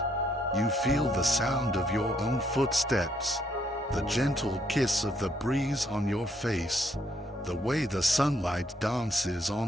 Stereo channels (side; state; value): both; normal; correlation 0.70